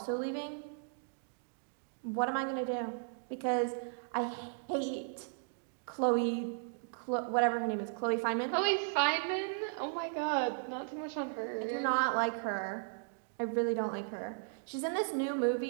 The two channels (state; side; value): silent; left; digital silence